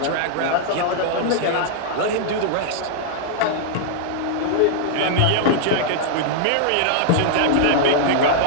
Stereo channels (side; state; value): both; different; correlation -0.01